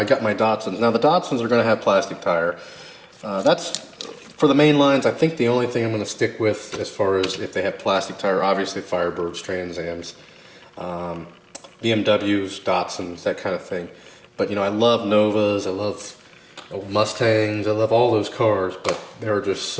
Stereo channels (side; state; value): both; identical; correlation 1.00